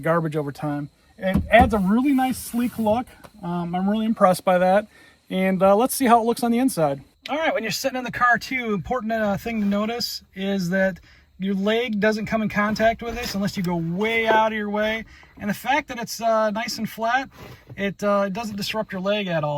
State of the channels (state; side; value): identical; both; correlation 1.00